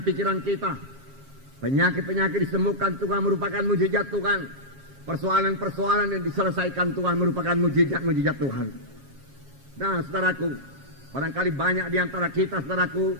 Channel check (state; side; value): late; left; 7.4 ms